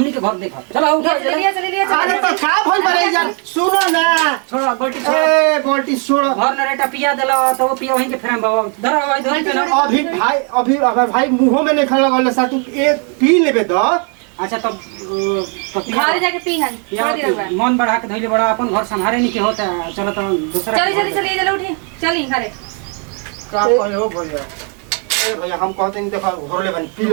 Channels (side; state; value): left; quieter; 38.7 dB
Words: के घर देख चलो उठा चलिए अरे तो का भइल बरे यार सुनो ना छोड़ गोल्टी छोड़ ए बोल्टी छोड़ घर न रेटा पिया देला तो वो पिया वहीं के फ्रेम बाबा धर भाई धर के ना अभी अगर भाई मुंह में नहीं खा लगल सा तू एक पी लेबे तो अच्छा तब घर जाके पीहन छोड़ दे रहा मन बढ़ा के धइले बड़ा अपन घर संभाले नहीं के होता चलो तो दूसरा चलिए चलो उठी चली घरे का कहे हो भैया ए भैया हम कहते नहीं देखो घर ले बन पी